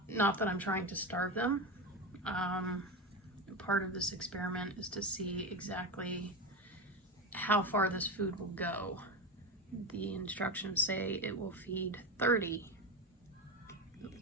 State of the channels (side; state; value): both; normal; correlation 0.19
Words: not that I'm trying to starve them. Part of this experiment is to see exactly how far this food will go. The instructions say it will feed 30